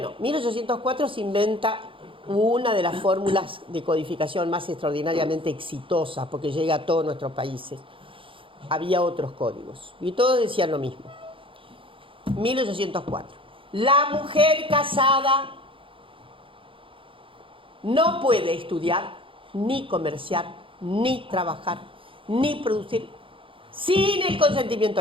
1804 se inventa una de las fórmulas de codificación más extraordinariamente exitosas, porque llega a todos nuestros países. Había otros códigos, y todos decían lo mismo. 1804. La mujer casada no puede estudiar, ni comerciar, ni trabajar, ni producir sin el consentimiento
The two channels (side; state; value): left; late; 0.25 ms